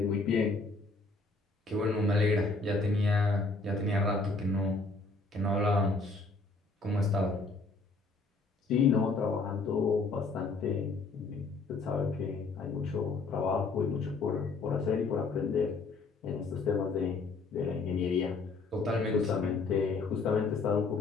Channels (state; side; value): quieter; right; 3.8 dB